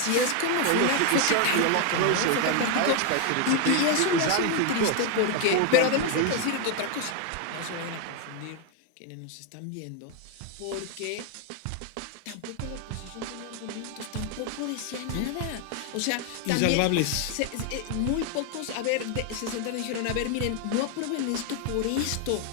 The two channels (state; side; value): different; both; correlation 0.01